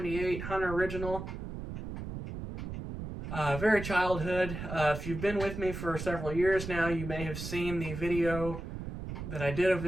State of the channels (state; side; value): noise; right; rumble, 7 dB below the sound